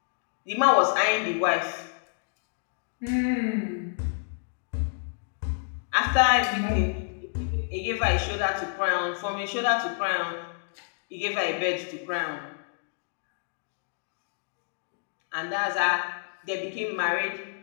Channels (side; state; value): right; silent; digital silence